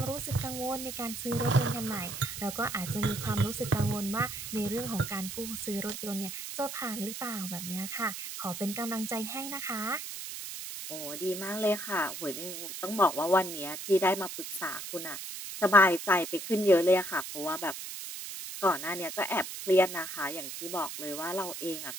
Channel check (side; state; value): right; noise; hiss, 8 dB below the sound